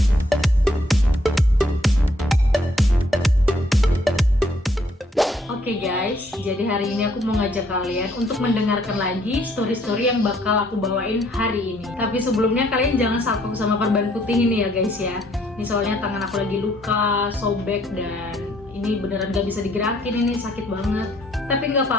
Oke guys, jadi hari ini aku mau ngajak kalian untuk mendengarkan lagi story-story yang bakal aku bawain hari ini. Tapi sebelumnya kalian jangan salpok sama perban putih ini ya guys ya. Ini soalnya tangan aku lagi luka, sobek, dan ini beneran gak bisa digerakin, ini sakit banget. Tapi nggak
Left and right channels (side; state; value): both; normal; correlation 0.67